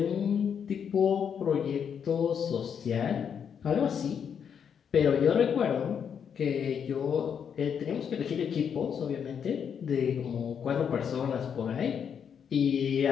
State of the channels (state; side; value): quieter; right; 7.6 dB